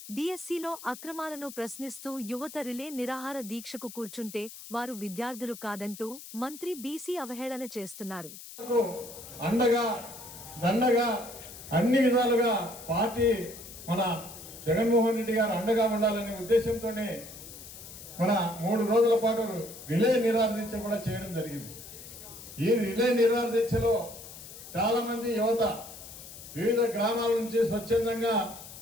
డీఎస్సీలో అక్రమాలను ప్రశ్నిస్తూ యువత రిలే నిరాహార దీక్షకు కూర్చుంటే వారు విద్యార్థులు కాదంటూ మంత్రి బీసీ అవహేళన చేస్తున్నారు. అన్ని విధాలుగా పార్టీ మన జగన్మోహన్ రెడ్డి గారు అండగా ఉండాలనే ఉద్దేశంతోనే మన 3 రోజుల పాటు రిలే నిరాహార దీక్ష కూడా చేయడం జరిగింది. ఈ రిలే నిరాహార దీక్షలో చాలా మంది యువత వివిధ గ్రామాల నుంచి స్వచ్ఛందంగా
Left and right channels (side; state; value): left; noise; hiss, 14 dB below the sound